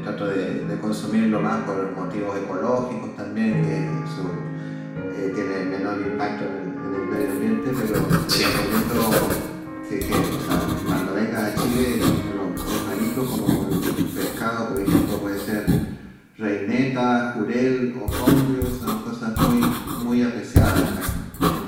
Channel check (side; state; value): both; identical; correlation 1.00